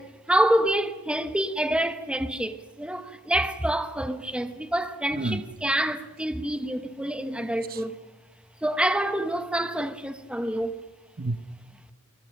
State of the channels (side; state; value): both; normal; correlation 0.82